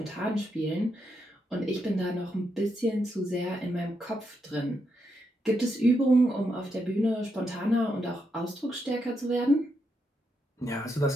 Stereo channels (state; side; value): normal; both; correlation 0.81